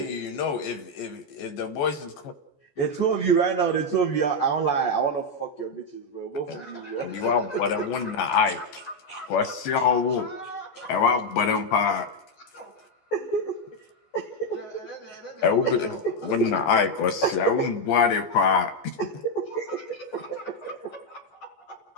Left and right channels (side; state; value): right; late; 14 ms